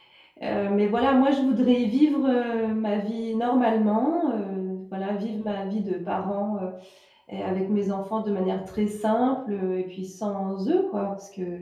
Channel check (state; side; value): identical; both; correlation 1.00